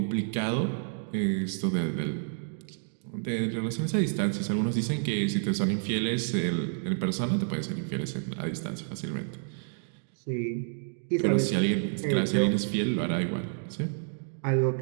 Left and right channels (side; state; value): left; silent; digital silence